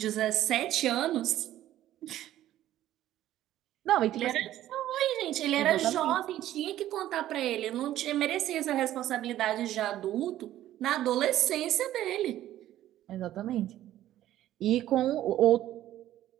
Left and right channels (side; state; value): left; quieter; 13.2 dB